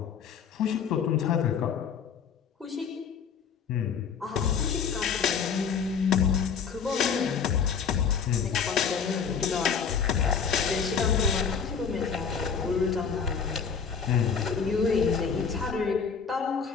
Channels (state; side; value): quieter; right; 6.4 dB